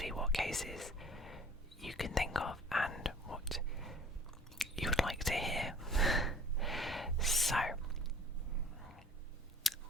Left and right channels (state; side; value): normal; both; correlation 0.50